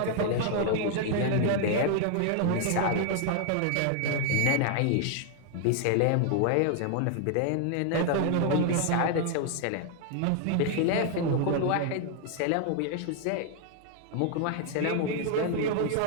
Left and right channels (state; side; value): different; both; correlation 0.00